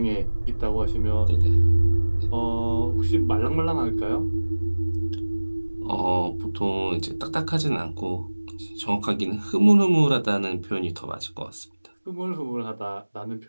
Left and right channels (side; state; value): both; inverted; correlation -1.00